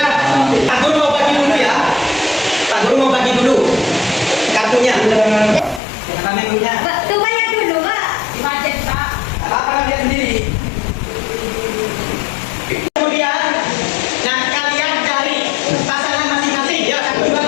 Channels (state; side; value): drops out; right; at 5.8 s